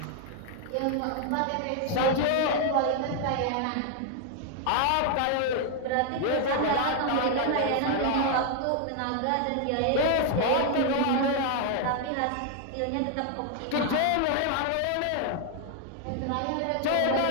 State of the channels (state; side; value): different; both; correlation 0.00